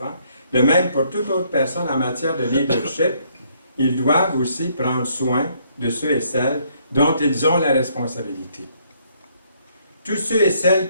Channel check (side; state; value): both; inverted; correlation -0.68